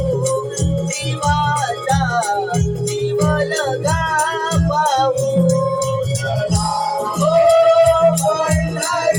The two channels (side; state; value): both; identical; correlation 1.00